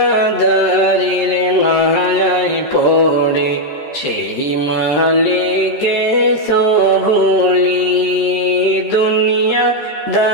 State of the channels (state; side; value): late; right; 13 ms